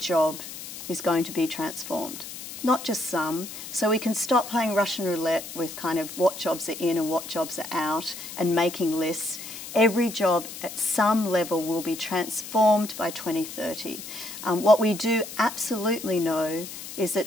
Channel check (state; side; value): noise; left; hiss, 11 dB below the sound